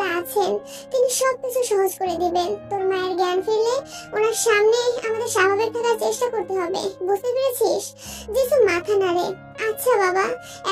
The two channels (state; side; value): identical; both; correlation 1.00